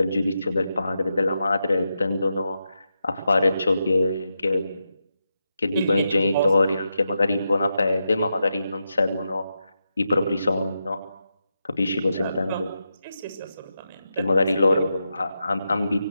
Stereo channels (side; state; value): both; inverted; correlation -0.87